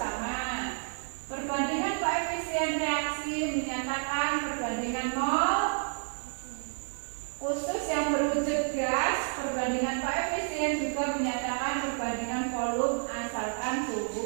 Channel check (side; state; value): left; silent; 58 dB below the other